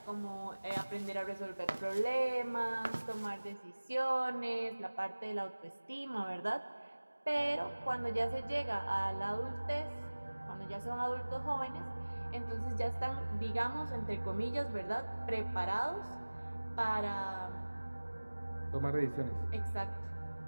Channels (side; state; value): both; inverted; correlation -1.00